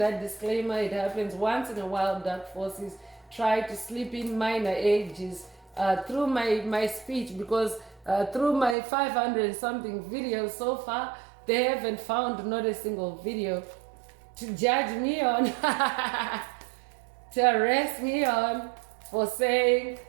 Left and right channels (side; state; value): left; drops out; at 8.8 s